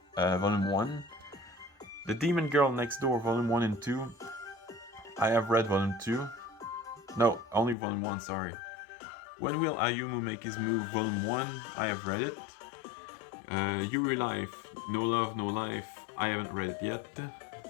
Volume 1. The Demon Girl Next Door, Volume 1 and 2, I have read Volume 2. No, only Volume 1, sorry. When Will Ayumu Make His Move, Volume 1, I have read it. Yuri Life, No Love, No Life, I haven't read it yet.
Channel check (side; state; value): right; drops out; at 7.8 s